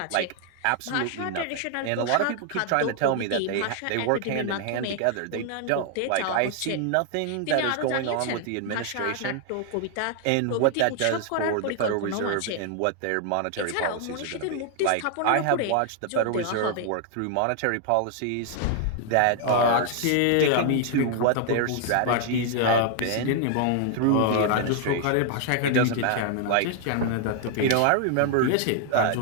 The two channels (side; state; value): both; different; correlation 0.00